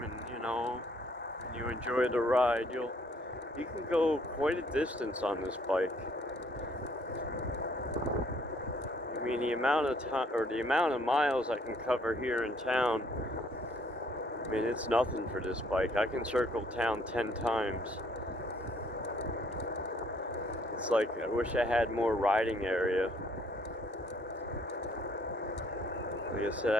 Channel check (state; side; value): normal; both; correlation 0.64